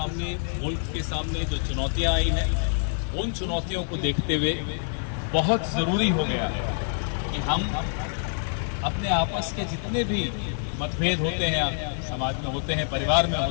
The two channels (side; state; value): right; silent; digital silence